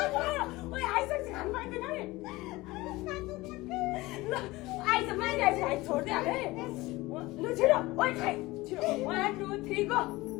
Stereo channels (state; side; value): quieter; right; 20.3 dB